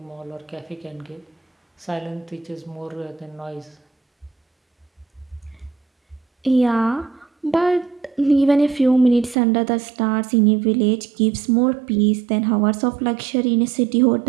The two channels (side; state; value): left; drops out; at 9.3 s